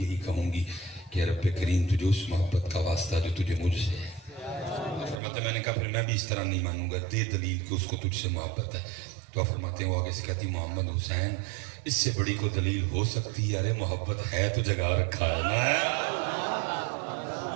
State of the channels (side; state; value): left; drops out; at 5.2 s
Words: کہوں گی کہ رب کریم تجھے اس محبت کا واسطہ جو تجھے مجھ سے ہے. فرماتے میں نے کہا پھر میں بھی اس طرح نہیں مانوں گا، دے دلیل کہ اس کو تجھ سے محبت ہے. تو فرماتے ہیں وہ آگے سے کہتی محمد حسین اس سے بڑی کو دلیل ہو سکتی ہے؟ ارے محبت ہے تو جگہ رکھا ہے نا،